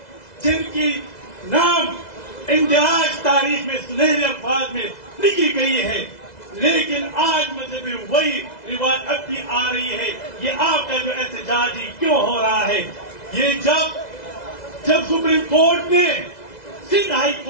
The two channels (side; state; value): right; late; 2.0 ms